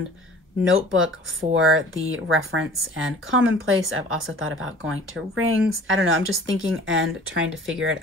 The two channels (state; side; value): normal; both; correlation 0.47